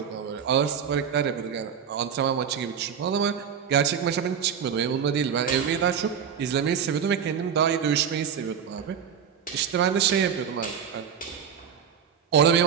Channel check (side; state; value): left; quieter; 7.7 dB